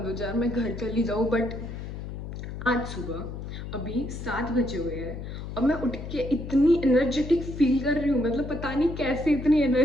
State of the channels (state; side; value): noise; left; hum, 8 dB below the sound